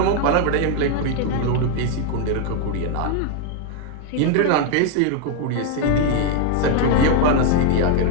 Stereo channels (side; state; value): both; different; correlation 0.00